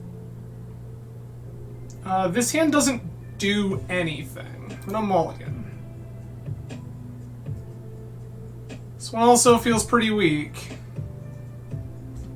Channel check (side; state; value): both; identical; correlation 1.00